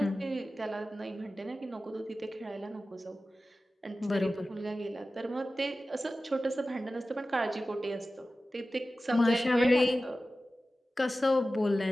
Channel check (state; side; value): normal; both; correlation 0.95